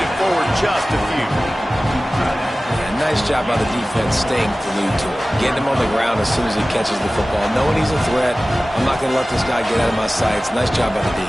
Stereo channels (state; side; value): normal; both; correlation 0.97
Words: forward just a few. Yeah, nice job by the defense staying glued to it. Getting him on the ground as soon as he catches the football. Knowing he's a threat, I'm not going to let this guy get out of my sights. Nice job by the D.